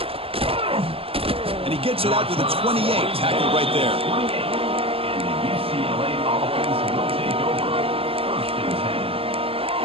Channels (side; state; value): left; late; 0.27 ms